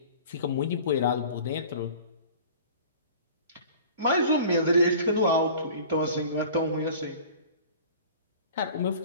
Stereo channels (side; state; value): both; inverted; correlation -0.44